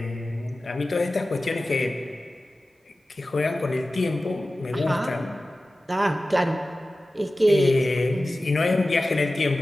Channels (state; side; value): normal; both; correlation 0.95